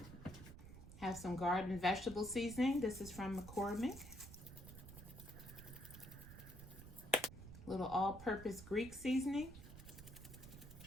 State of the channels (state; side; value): noise; right; rumble, 14 dB below the sound